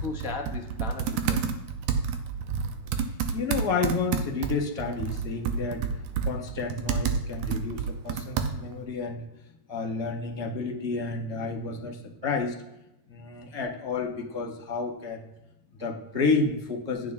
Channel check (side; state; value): left; late; 9.1 ms